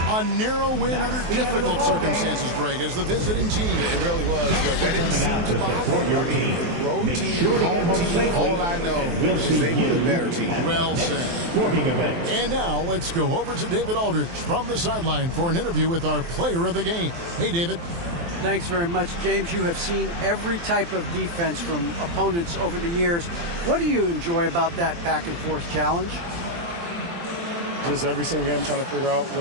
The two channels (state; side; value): late; left; 23 ms